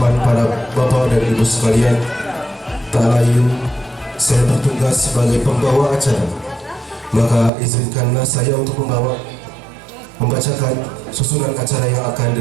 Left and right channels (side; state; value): left; drops out; at 7.5 s